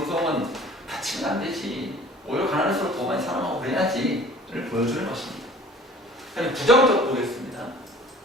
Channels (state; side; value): normal; both; correlation 0.47